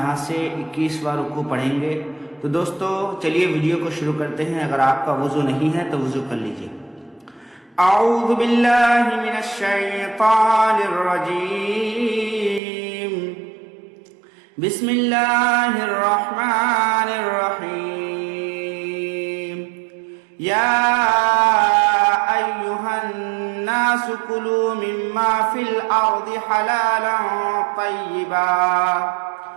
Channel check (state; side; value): drops out; left; at 12.6 s